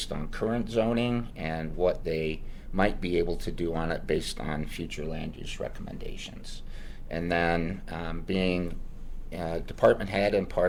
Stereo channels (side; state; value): both; identical; correlation 1.00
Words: on current zoning, and what they might be able to do on it based on future land use recommendations. And then being department head and